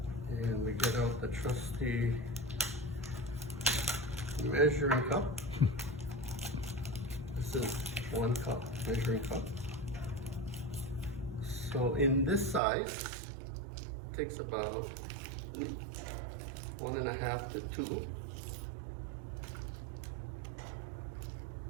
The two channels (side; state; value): left; drops out; at 12.6 s